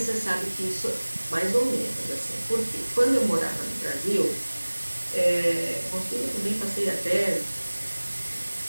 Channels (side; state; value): both; inverted; correlation -1.00